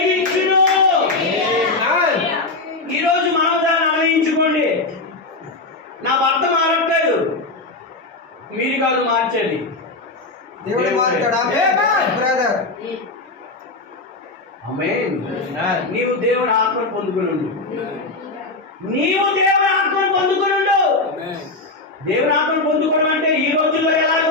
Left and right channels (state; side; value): quieter; right; 3.2 dB